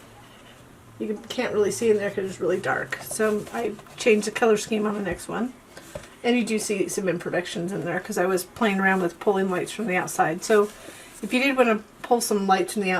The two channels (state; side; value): identical; both; correlation 1.00